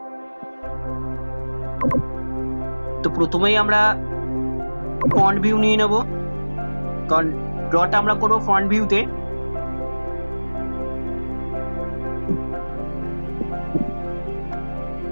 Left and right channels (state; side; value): inverted; both; correlation -1.00